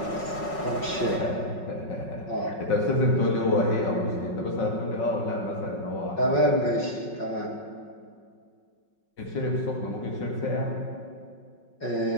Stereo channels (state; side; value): late; right; 5.4 ms